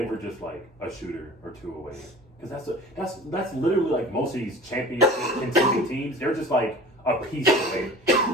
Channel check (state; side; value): normal; both; correlation 0.41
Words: just like a shooter or two away. Because that's literally like most of these championship contending teams. They're just like a piece away.